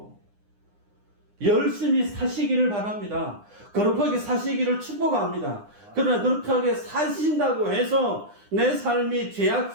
열심히 사시기를 바랍니다. 거룩하게 사시기를 축복합니다. 그러나 거룩하게 사신다고 해서 내 삶이 죄악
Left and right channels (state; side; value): late; left; 9.8 ms